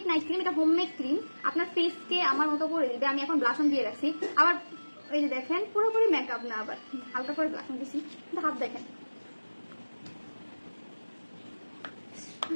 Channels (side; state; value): both; inverted; correlation -1.00